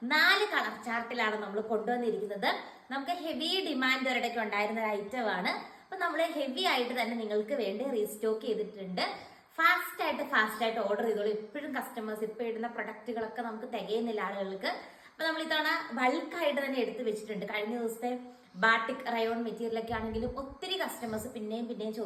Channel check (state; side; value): identical; both; correlation 1.00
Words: 4 കളർ ചാർട്ടിലാണ് നമ്മൾ കൊണ്ടുവന്നിരിക്കുന്നത്. നമുക്ക് ഹെവി ഡിമാൻഡ് ഒരിടയ്ക്ക് ഉണ്ടായിരുന്ന ഒരു ഐറ്റം ആണ്. അപ്പൊ നമ്മൾ ഹെവി ആയിട്ട് തന്നെ നിങ്ങൾക്ക് വേണ്ടി റീസ്റ്റോക്ക് ചെയ്തിട്ടുണ്ട്. ഫാസ്റ്റ് ആയിട്ട് ഓർഡർ ചെയ്തോളൂ. എപ്പോഴും കസ്റ്റമേഴ്സ് ഇപ്പൊ ഇടുന്ന പ്രൊഡക്റ്റുകളൊക്കെ നമുക്ക് തികയുന്നില്ല ആളുകൾക്ക്. അപ്പൊ നമ്മൾ ഇത്തവണ ബൾക്കായിട്ട് തന്നെ എടുത്തു വെച്ചിട്ടുണ്ട്. കഴിഞ്ഞ ദിവസത്തെ ബാട്ടിക് റയോൺ മെറ്റീരിയൽ ഒക്കെ ആണെങ്കിലും ഒത്തിരി കസ്റ്റമേഴ്സ് പിന്നെയും